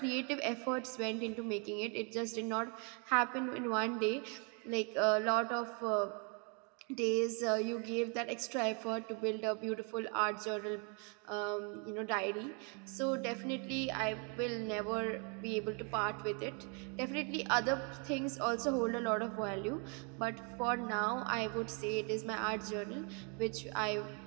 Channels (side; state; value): left; quieter; 36.5 dB